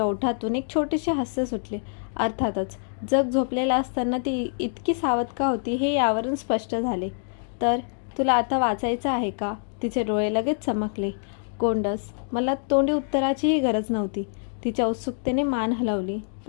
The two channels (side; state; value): right; silent; digital silence